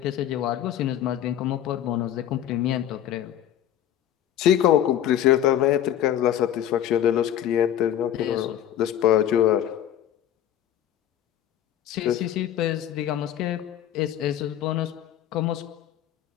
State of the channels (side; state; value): right; quieter; 10.9 dB